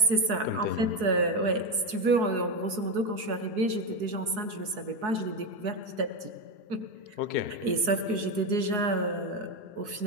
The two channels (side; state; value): left; late; 4.7 ms